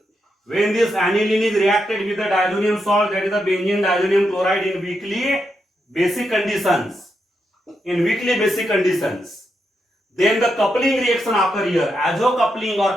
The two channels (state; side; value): normal; both; correlation 0.83